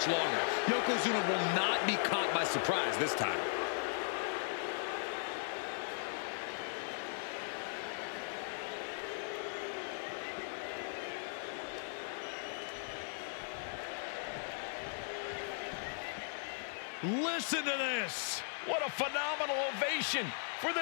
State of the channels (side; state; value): right; silent; digital silence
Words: longer. Yokozuna will not be caught by surprise this time. Listen to this. What a phenomenal ovation for the